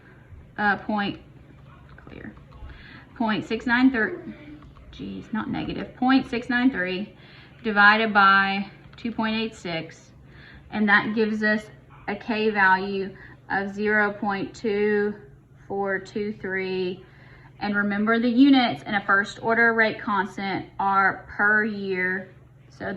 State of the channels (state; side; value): identical; both; correlation 1.00